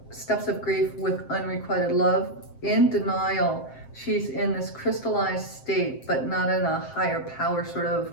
steps of grief with unrequited love, in denial, she's in this crystallized state, but not in a higher power sort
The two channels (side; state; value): right; late; 7.6 ms